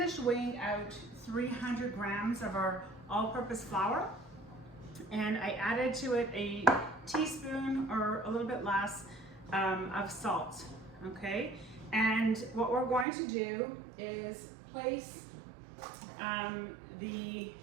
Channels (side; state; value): left; drops out; at 13.1 s